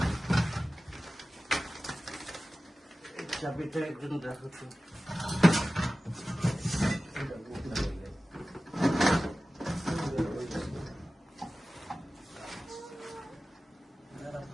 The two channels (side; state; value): both; normal; correlation 0.96